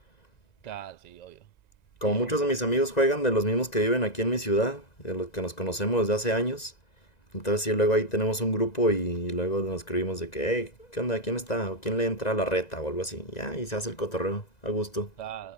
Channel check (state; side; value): late; right; 2.0 ms